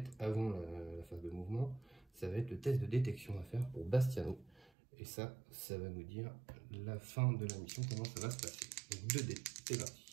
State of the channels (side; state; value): left; drops out; at 4.7 s